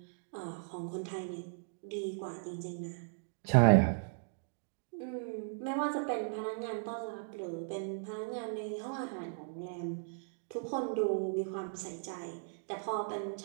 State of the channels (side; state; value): left; silent; digital silence